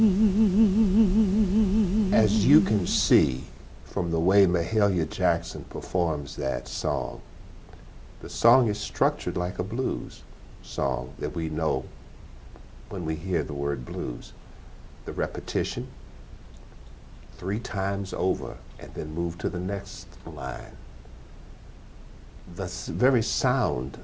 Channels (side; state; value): both; identical; correlation 1.00